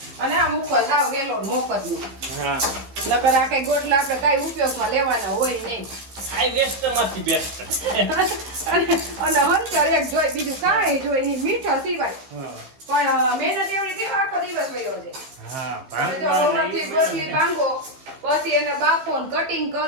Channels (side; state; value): left; late; 15 ms